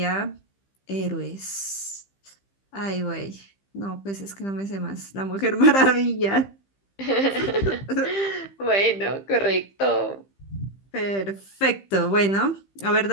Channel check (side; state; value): right; late; 15 ms